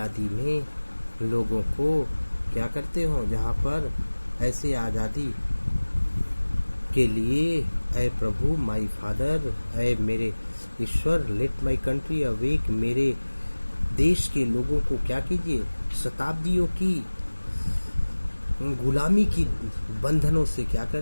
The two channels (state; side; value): inverted; both; correlation -1.00